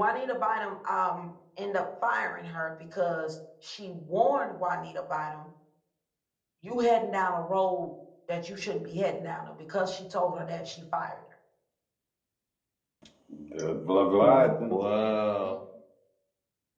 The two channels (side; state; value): both; identical; correlation 1.00